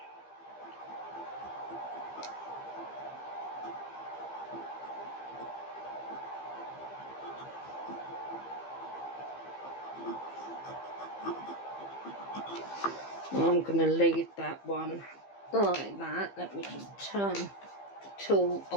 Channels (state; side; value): late; right; 15 ms